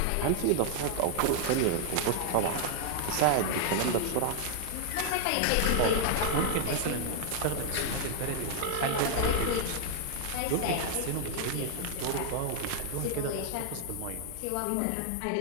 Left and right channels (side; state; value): both; different; correlation 0.00